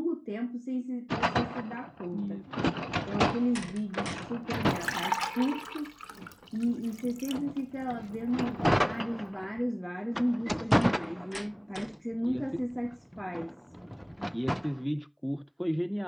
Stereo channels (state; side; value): identical; both; correlation 1.00